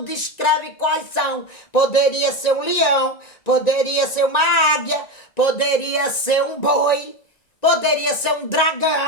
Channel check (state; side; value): late; right; 1.9 ms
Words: descreve quais são. Poderia ser um leão, poderia ser uma águia, poderia ser um boi, poderia ser um